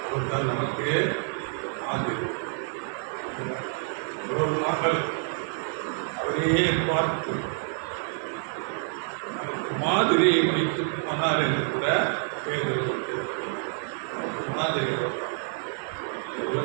அவர்தான் நமக்கு மாதிரி மகள் அவரையே பார்த்து நமக்கு மாதிரியை வைத்து போனார் என்று கூட பேருக்கு நமக்கு மாதிரி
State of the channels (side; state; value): left; silent; 59 dB below the other